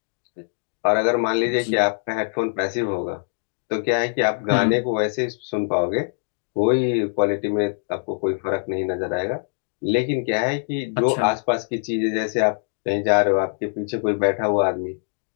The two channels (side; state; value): right; silent; 63 dB below the other